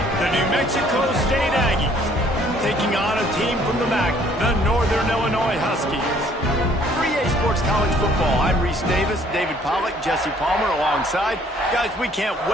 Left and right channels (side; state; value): both; normal; correlation 0.60